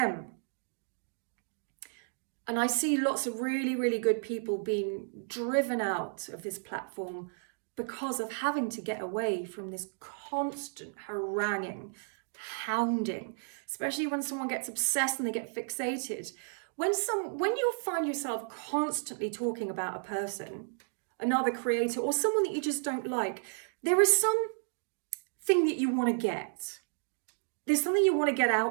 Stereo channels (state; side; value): silent; left; digital silence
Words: And I see lots of really, really good people being driven out of this platform because of having to get away from this constant haranguing, hounding, especially when someone gets obsessed and they get fixated. When you find yourself constantly talking about a person, another creator, or someone that you just don't like, there is something that you want to get. There's something you want to get